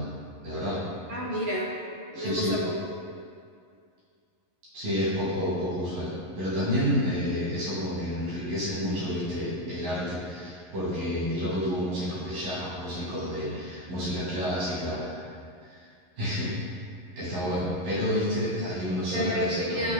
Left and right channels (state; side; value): late; left; 11 ms